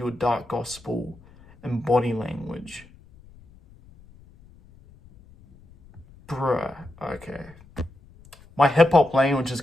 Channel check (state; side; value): noise; left; rumble, 25 dB below the sound